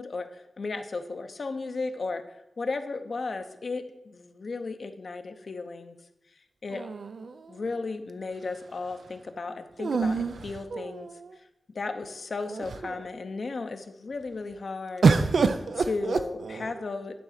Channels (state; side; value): normal; both; correlation 0.89